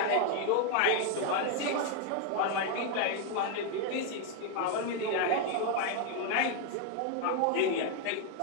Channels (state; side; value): different; both; correlation 0.01